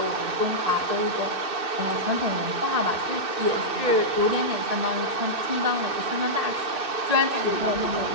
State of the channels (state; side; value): late; left; 2.6 ms